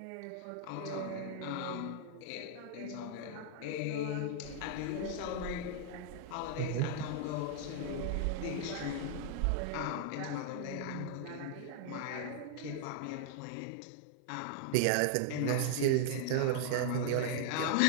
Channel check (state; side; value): different; both; correlation -0.01